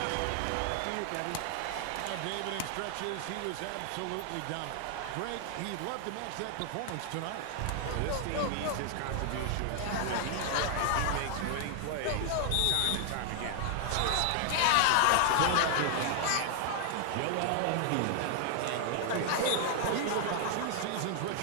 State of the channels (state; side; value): different; both; correlation 0.00